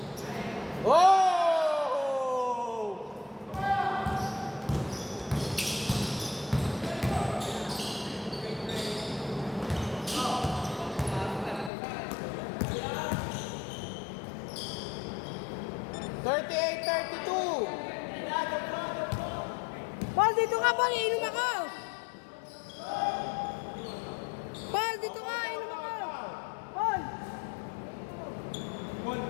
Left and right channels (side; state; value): right; drops out; at 11.7 s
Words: Oh! Thirty-eight, 32. Paul, dito ka, Paul. Inom ako. Paul, dito ka. Inom ako. Paul. Paul,